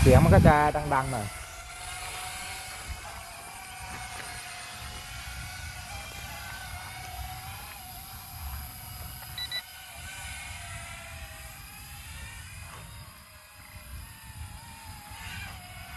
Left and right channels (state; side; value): identical; both; correlation 1.00